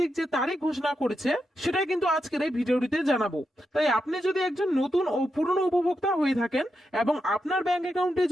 যে তারিখ ঘোষণা করেছে সেটাই কিন্তু আজকের এই ভিডিওটিতে জানাবো। তাই আপনি যদি একজন নতুন ও পুরনো উপভোক্তা হয়ে থাকেন এবং আপনার ব্যাংক অ্যাকাউন্টে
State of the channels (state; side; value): normal; both; correlation 0.86